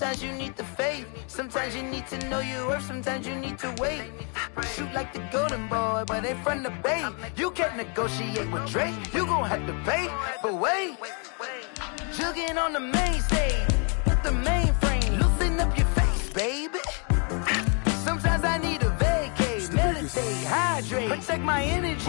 you need the faith. Sometimes you need to know your worth. Sometimes you need to wait. Shoot like the golden boy, but they from the bay. You can't negotiate with Drake. You gon' have to pay. But wait, jugging on the main stage. Put the mainframe. Loosen up your face, baby. Sometimes I need a vacate. Meditate, hydrate. Protect my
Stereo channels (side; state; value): right; quieter; 38.2 dB